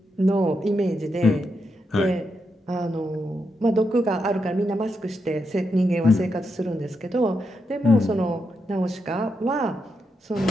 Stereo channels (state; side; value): normal; both; correlation 0.83